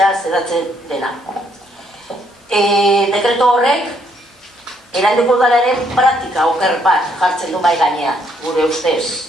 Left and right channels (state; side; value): normal; both; correlation 0.70